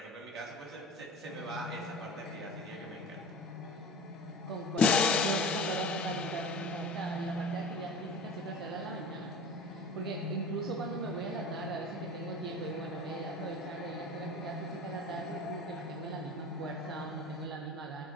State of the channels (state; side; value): normal; both; correlation 0.36